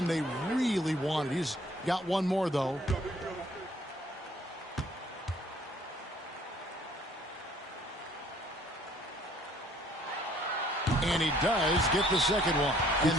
they really wanted. He's got one more, though. And he does get the second one. And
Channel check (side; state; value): both; normal; correlation 0.59